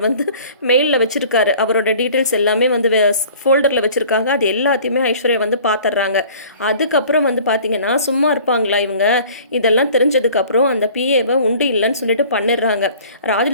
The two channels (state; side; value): inverted; both; correlation -0.49